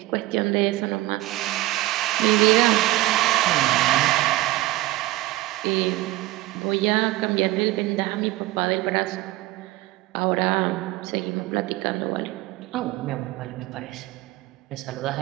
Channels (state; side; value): quieter; left; 17.4 dB